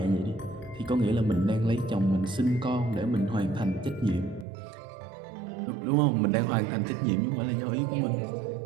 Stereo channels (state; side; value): drops out; left; at 4.5 s